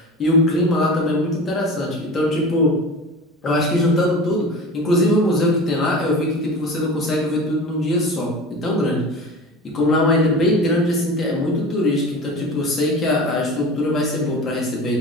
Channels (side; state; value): both; normal; correlation 0.34